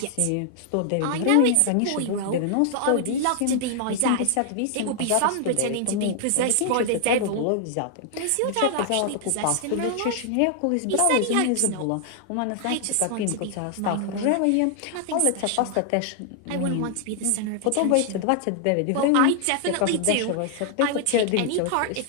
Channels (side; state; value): both; different; correlation 0.00